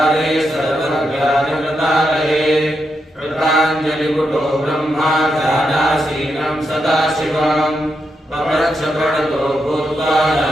सर्वज्ञानवृतालये कृताञ्जलिपुटो ब्रह्मा ध्यानासीनं सदाशिवम् पप्रच्छ प्रणतो भूत्वा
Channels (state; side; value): normal; both; correlation 0.84